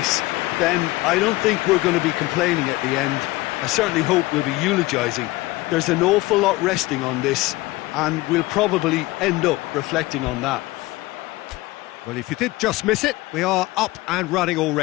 then I don't think we're going to be complaining at the end. I certainly hope we'll be eulogising. There's an awful lot resting on this, and we'll probably end up reflecting on that. Well, if you did just miss it, we are up and running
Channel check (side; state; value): right; quieter; 19.8 dB